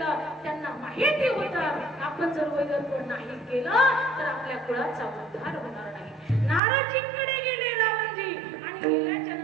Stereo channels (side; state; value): left; drops out; at 6.6 s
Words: त्यांना माहिती होतं आपण जर वैरत्व नाही केलं तर आपल्या कुळाचा उद्धार होणार नाही. नारदजींकडे गेले रावणजी आणि गेल्याच्या